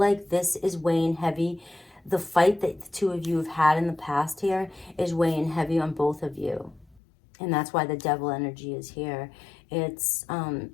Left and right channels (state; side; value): drops out; right; at 7.0 s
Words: this is weighing heavy, the fight that the two of you have had in the past here is weighing heavy on both of you. And that's why the devil energy is here. It's